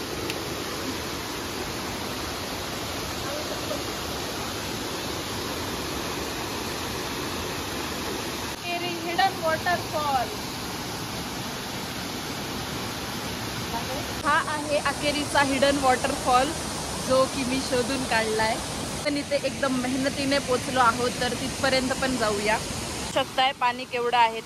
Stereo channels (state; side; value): identical; both; correlation 1.00